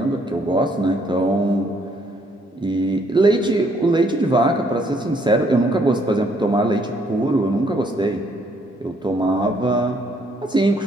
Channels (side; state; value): both; normal; correlation 0.68